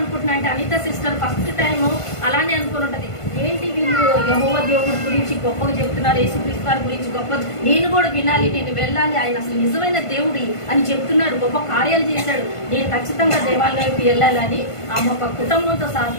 అంటే అనిత సిస్టర్ ఫస్ట్ టైం అలానే అనుకుని ఉంటది. ఏంటి వీళ్ళు యెహోవా దేవుడి గురించి గొప్పగా చెప్తున్నారు, యేసుక్రీస్తు వారి గురించి గొప్ప, నేను కూడా వినాలి, నేను వెళ్ళాలి, ఆయన అసలు నిజమైన దేవుడి అని చెప్తున్నాడు, గొప్ప కార్యాలు చేశాడు, నేను ఖచ్చితంగా దేవాలయంకి వెళ్ళాలని ఆమె ఒక కుటుంబంతో సహా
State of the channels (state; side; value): late; right; 1.5 ms